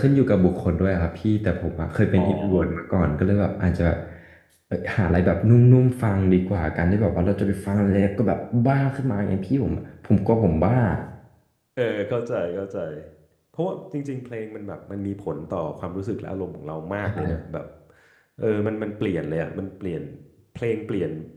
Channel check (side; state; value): both; identical; correlation 1.00